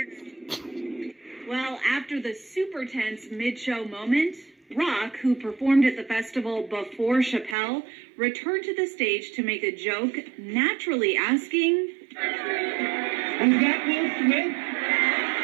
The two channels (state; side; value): drops out; left; at 7.6 s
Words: Well, after the super tense mid-show moment, Rock, who performed at the festival before Chappelle, returned to the stage to make a joke, naturally asking, Was that Will Smith?